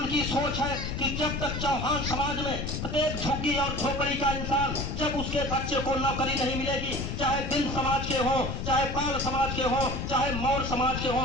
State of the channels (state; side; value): noise; left; rumble, 4 dB below the sound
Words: सोच है कि जब तक चौहान समाज में प्रत्येक झुग्गी और झोपड़ी का इंसान, जब उसके बच्चे को नौकरी नहीं मिलेगी, चाहे बिंद समाज के हो, चाहे पाल समाज के हो, चाहे मौर्य समाज के हो,